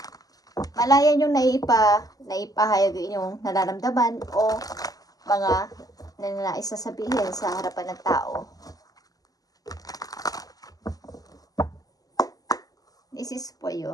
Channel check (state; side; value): late; right; 0.17 ms